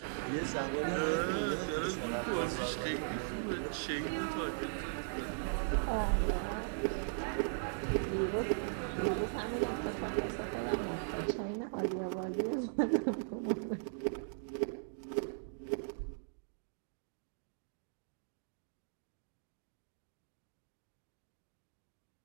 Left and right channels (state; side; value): silent; left; digital silence